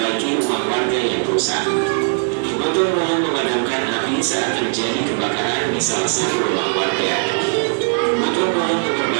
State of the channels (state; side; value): silent; left; 61 dB below the other